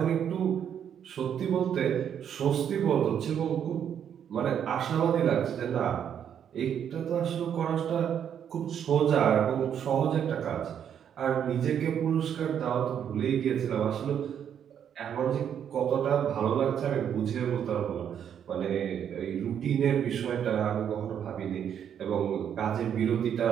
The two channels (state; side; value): quieter; left; 8.8 dB